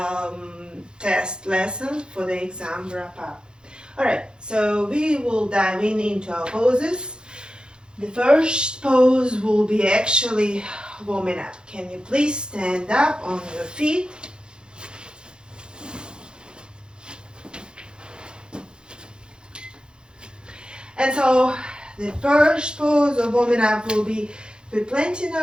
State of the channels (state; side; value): late; left; 0.049 ms